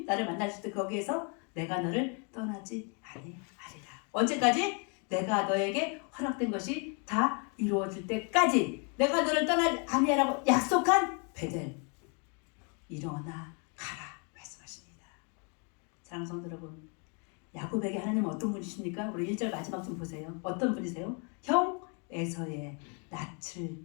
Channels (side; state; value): right; quieter; 36.6 dB